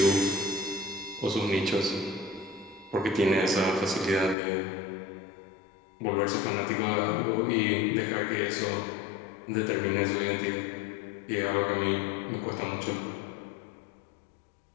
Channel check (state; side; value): drops out; right; at 4.4 s